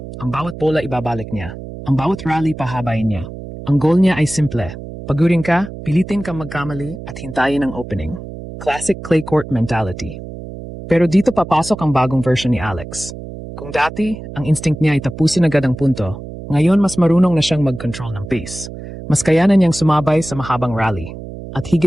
Ang bawat bola ibabalik niya. Ang bawat rally pahabain niya. Ang goal niya ay simple. Pagurin ka, pilitin kang magkamali at hintayin ang opening. Classic clay court mentality. Pero dito papasok ang bagong version ni Alex. Kung dati, ang instinct niya ay tapusin agad ang punto, ngayon mas marunong na siyang mag-control ng pace. Mas kayanan niyang sumabay sa mahabang rally. At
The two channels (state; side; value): noise; right; hum, 11 dB below the sound